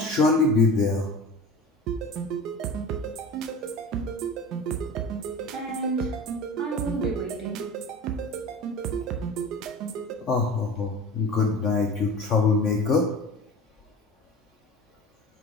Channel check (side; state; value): both; normal; correlation 0.35